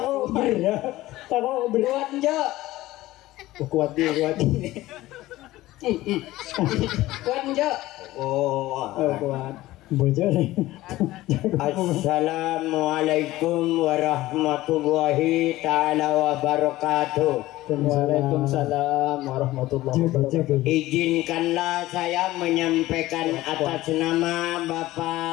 berat. Kuat njo. Kuat di. Kuat njo. Kuat. Bocor. Assalamualaikum warahmatullahi ta'ala wabarakatuh. Waalaikumsalam warahmatullahi wabarakatuh. Izinkanlah saya menyampaikan atas nama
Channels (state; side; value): quieter; right; 16.9 dB